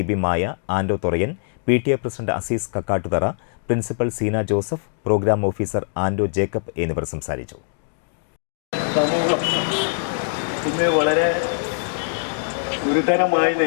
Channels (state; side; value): silent; right; digital silence